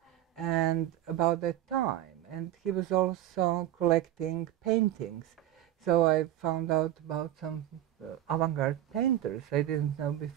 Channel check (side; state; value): left; quieter; 12.8 dB